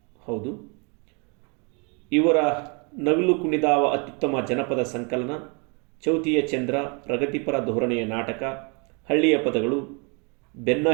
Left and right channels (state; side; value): quieter; left; 34.1 dB